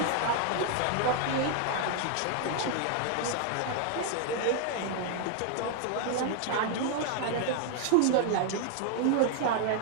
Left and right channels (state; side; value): different; both; correlation 0.00